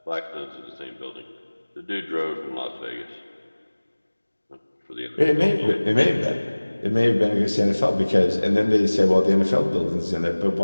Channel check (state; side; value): inverted; both; correlation -1.00